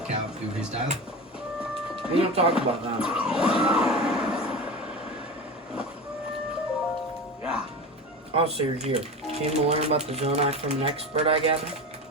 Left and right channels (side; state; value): both; normal; correlation 0.27